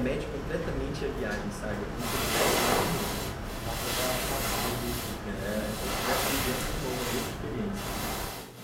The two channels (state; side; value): identical; both; correlation 1.00